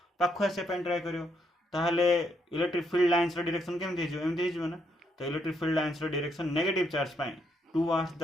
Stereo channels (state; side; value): normal; both; correlation 0.75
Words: पाख आसापी ट्राए कर ताहले इलेक्ट्रिक फील्ड लाइन्स डायरेक्शन केमती एमती हो ना तो electric field lines direction negative charge पे towards